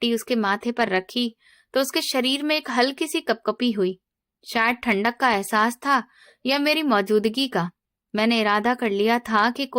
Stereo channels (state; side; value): identical; both; correlation 1.00